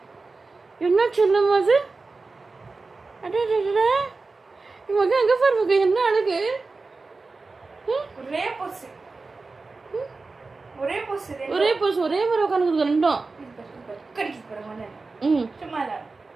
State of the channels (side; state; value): left; quieter; 3.9 dB